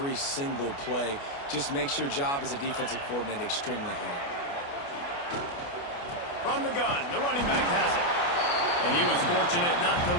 single play. Just makes your job as a defensive coordinator extremely hard. From the gun, the running back has it. And he was fortunate not to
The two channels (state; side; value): late; right; 29 ms